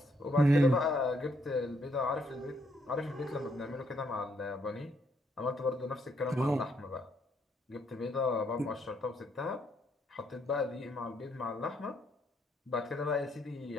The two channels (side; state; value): both; normal; correlation 0.73